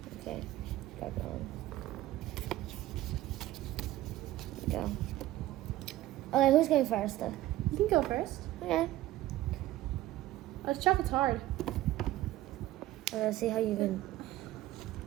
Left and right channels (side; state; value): left; quieter; 15.5 dB